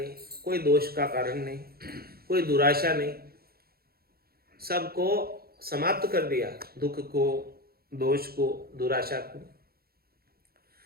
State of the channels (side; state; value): left; late; 0.44 ms